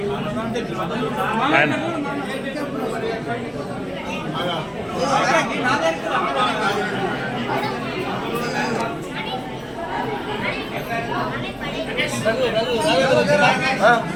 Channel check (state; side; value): identical; both; correlation 1.00